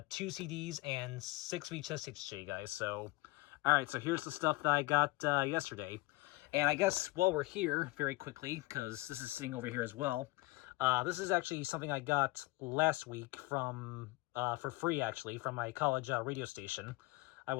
2 CDs and 6 VHS tapes to show you guys. So all right, so here's the stuff that I got yesterday. And I guess while we're here, very quickly, because this is sitting over here as well, this is actually something I got last week from for free, actually, from my college radio station. I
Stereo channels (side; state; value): right; quieter; 21.4 dB